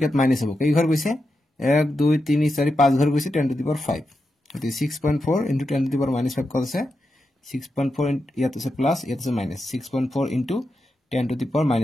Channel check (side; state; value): both; normal; correlation 0.88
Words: মাইনাস হ'ব কেই ঘৰ গৈছে 1 2 3 4 5 ঘৰ গৈছে 10 টু দি পাৱাৰ 5 গতিকে 6.4 * 10 টু দি পাৱাৰ -5 কত আছে 6.4 ইয়াত আছে প্লাস ইয়াত আছে মাইনাস 6.4 * 10 টু দি পাৱাৰ